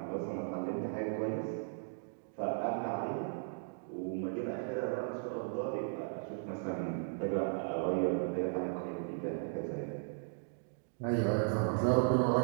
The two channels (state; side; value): silent; left; digital silence